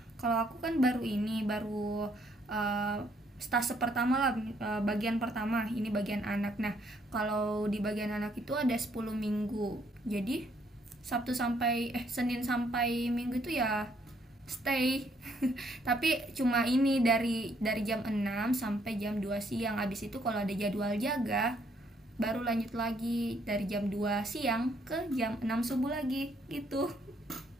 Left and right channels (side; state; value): both; normal; correlation 0.69